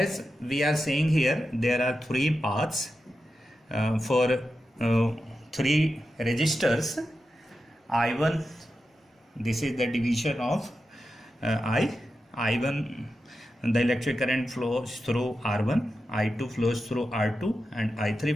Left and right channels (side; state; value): both; normal; correlation 0.90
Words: we are saying here, there are 3 paths for 3 resistors. I1, this is the division of I1, the electric current flows through R1, I2 flows through R2 and